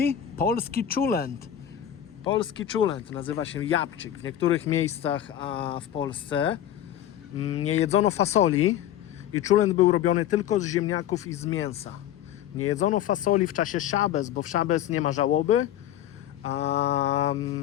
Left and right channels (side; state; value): right; quieter; 11.2 dB